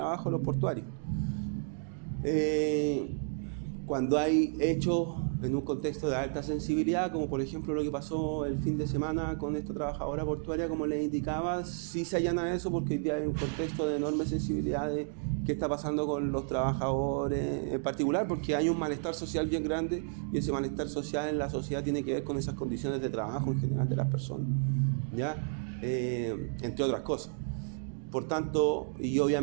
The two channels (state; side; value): silent; left; digital silence